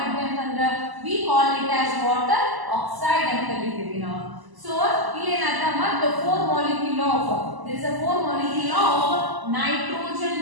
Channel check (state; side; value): late; left; 1.0 ms